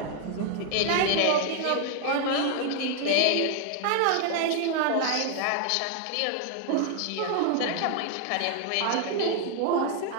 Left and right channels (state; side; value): different; both; correlation 0.00